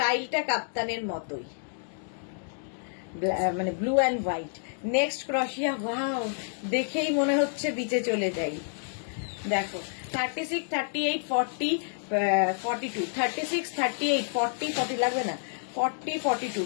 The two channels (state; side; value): silent; right; digital silence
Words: কাপ্তানের মতোই, মানে ব্লু অ্যান্ড হোয়াইট। নেক্সট ক্রশিয়া, ওয়াও, দেখেই মনে হচ্ছে বিচে চলে যাই। দেখো 36, 38, 40, 42, 36, 38, 40, 40 লাগবে না, 40, 42,